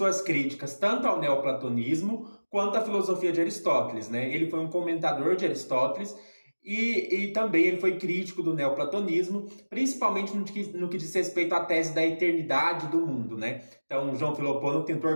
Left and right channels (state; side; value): inverted; both; correlation -1.00